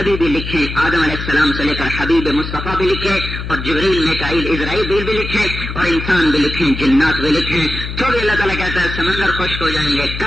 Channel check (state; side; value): noise; left; hum, 7 dB below the sound